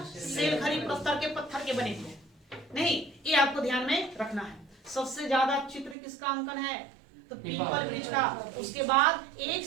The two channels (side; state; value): left; drops out; at 6.0 s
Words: सेल खरी प्रस्तर के पत्थर के बने हुए। नहीं, ये आपको ध्यान में रखना है। सबसे ज्यादा चित्र किसका अंकन है? तो पीपल वृक्ष का, उसके बाद एक